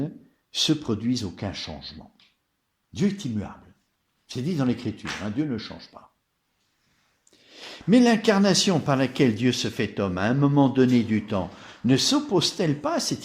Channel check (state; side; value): identical; both; correlation 1.00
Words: se produise aucun changement. Dieu est immuable. C'est dit dans l'Écriture, hein, Dieu ne change pas. Mais l'incarnation par laquelle Dieu se fait homme à un moment donné du temps ne s'oppose-t-elle pas à